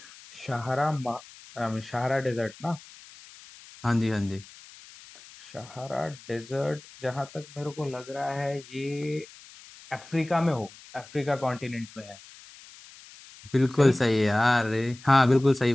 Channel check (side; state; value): left; noise; hiss, 20 dB below the sound